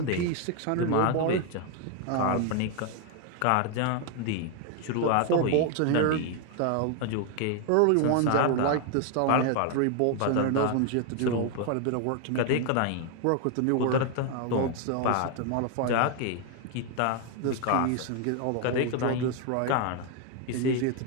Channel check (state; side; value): different; both; correlation 0.01